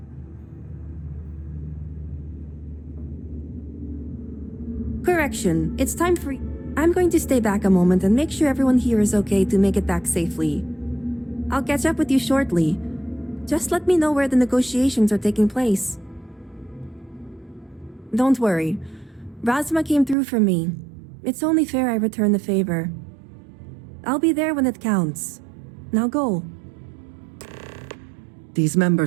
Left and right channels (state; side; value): drops out; left; at 20.2 s